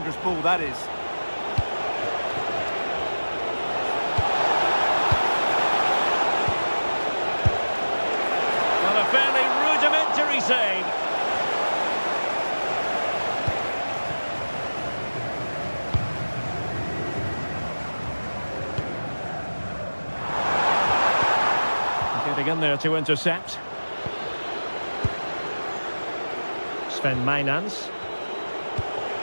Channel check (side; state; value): both; inverted; correlation -1.00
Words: ball that is. Well, a fairly rudimentary save. Getting in there to intercept. Sven Mainans.